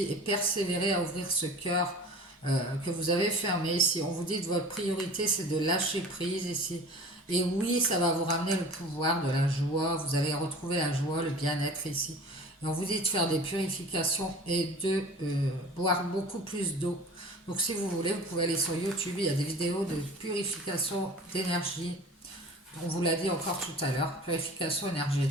et persévérez à ouvrir ce cœur que vous avez fermé ici. On vous dit que votre priorité, c'est de lâcher prise ici. Et oui, ça va vous ramener le pouvoir de la joie. Vous allez retrouver la joie, le bien-être ici. Et on vous dit de faire des purifications et de boire beaucoup plus d'eau. Donc si vous voulez, vous pouvez aller sur YouTube. Il y a des vidéos de purification d'énergie. On vous l'a dit encore tout à l'heure, purification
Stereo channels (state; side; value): normal; both; correlation 0.41